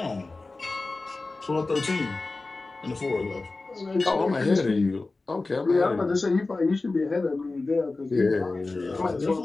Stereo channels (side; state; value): right; quieter; 3.5 dB